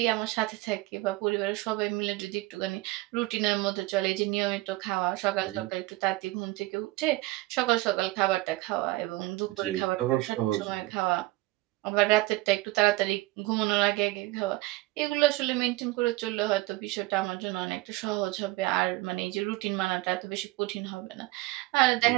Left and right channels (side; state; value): left; quieter; 19.7 dB